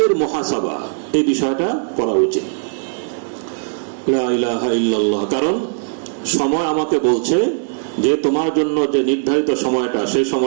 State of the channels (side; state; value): left; silent; 67 dB below the other